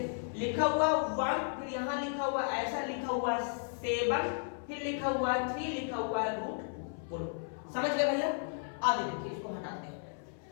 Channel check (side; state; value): right; silent; 55 dB below the other